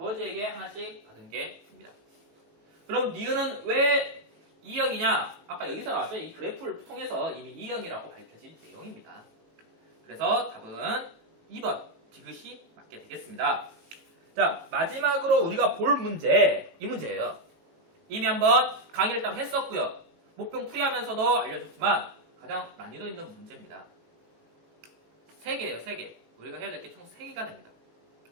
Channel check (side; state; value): left; late; 18 ms